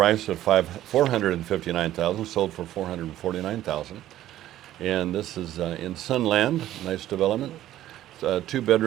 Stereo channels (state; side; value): quieter; left; 13.3 dB